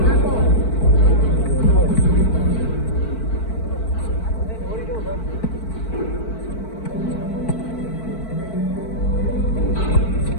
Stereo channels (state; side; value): late; right; 4.5 ms